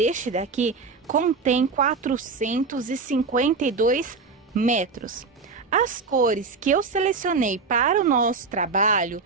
daqui contém 452 metros. As cores que eu selecionei para o nosso trabalho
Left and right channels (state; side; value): quieter; left; 4.5 dB